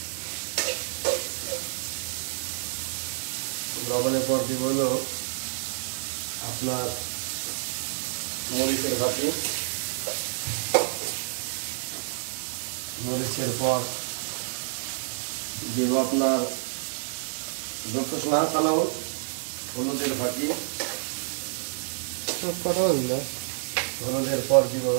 লবণের পর দিব হলো আপনার মরিচের ভাতি, মরিচের পর দিব আপনার হলুদের ফাঁকি, হলুদের পর দিব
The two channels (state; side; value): silent; left; digital silence